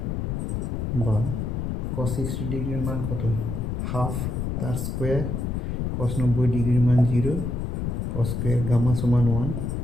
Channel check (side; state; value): left; noise; rumble, 2 dB below the sound